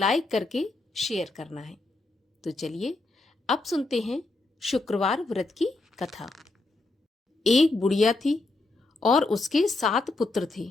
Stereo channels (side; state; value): right; quieter; 3.1 dB